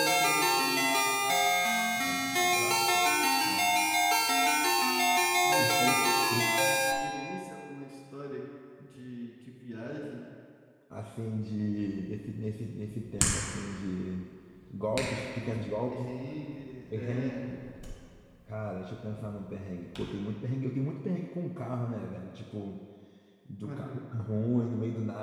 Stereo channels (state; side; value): identical; both; correlation 1.00